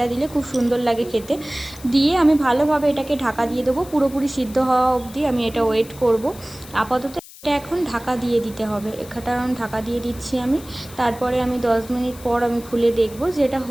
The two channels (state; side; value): noise; left; hiss, 19 dB below the sound